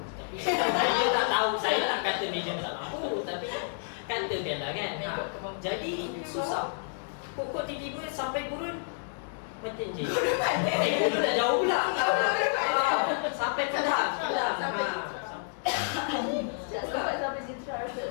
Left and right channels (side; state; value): right; silent; 58 dB below the other